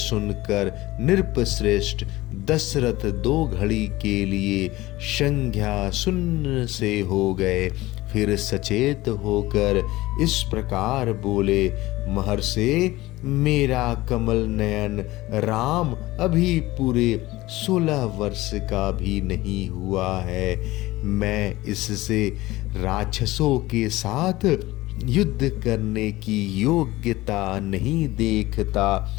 नृपश्रेष्ठ दशरथ 2 घड़ी के लिए संज्ञा शून्य से हो गए। फिर सचेत होकर इस प्रकार बोले, महर्षि, मेरा कमल नयन राम अभी पूरे 16 वर्ष का भी नहीं हुआ है। मैं इससे राक्षसों के साथ युद्ध करने की योग्यता नहीं देखता।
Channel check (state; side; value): quieter; right; 18.5 dB